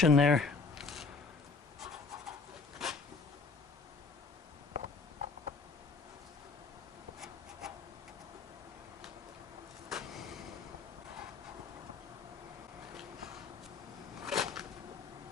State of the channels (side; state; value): right; quieter; 4.4 dB